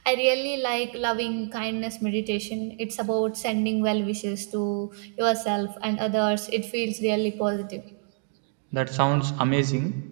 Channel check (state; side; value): silent; left; 60 dB below the other